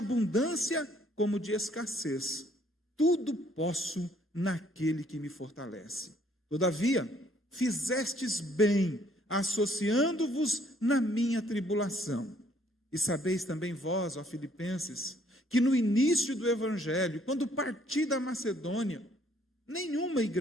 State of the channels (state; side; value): normal; both; correlation 0.64